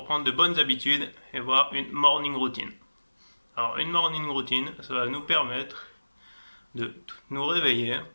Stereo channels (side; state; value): both; inverted; correlation -1.00